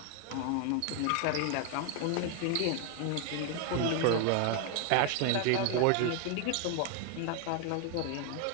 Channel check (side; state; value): both; different; correlation 0.01